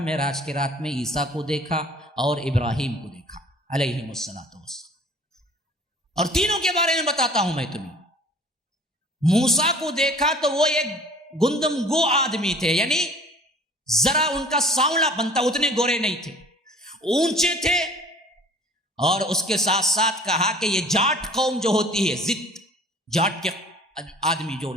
معراج کی رات میں، عیسیٰ کو دیکھا اور ابراہیم کو دیکھا علیہم الصلاۃ والسلام. اور تینوں کے بارے میں بتاتا ہوں میں تمہیں. موسیٰ کو دیکھا تو وہ ایک گندم گو آدمی تھے، یعنی ذرا ان کا سانولا بنتا، اتنے گورے نہیں تھے، اونچے تھے. اور اس کے ساتھ ساتھ کہا کہ یہ جاٹ قوم جو ہوتی ہے، زد جاٹ کے آدمی جو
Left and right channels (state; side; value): normal; both; correlation 0.49